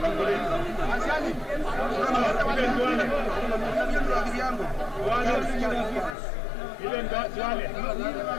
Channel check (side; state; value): right; drops out; at 6.2 s